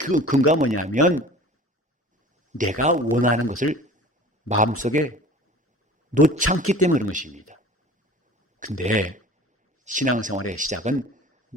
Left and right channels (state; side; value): normal; both; correlation 0.43